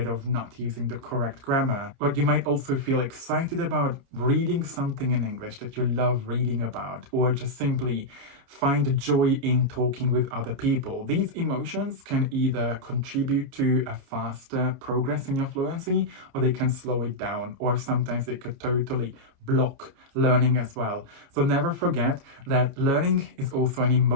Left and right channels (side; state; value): left; late; 29 ms